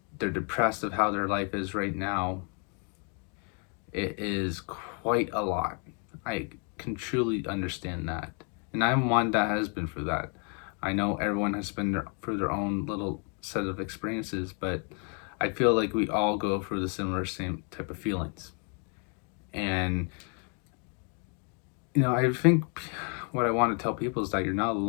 they're depressed of how their life is right now. It is quite a lot. I can truly understand that. And I'm one that has been through that. I know everyone has been through their own little set of experiences, but I feel like we all go through the similar same type of feelings. And, I think what I want to tell people is that you're not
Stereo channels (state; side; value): quieter; right; 39.1 dB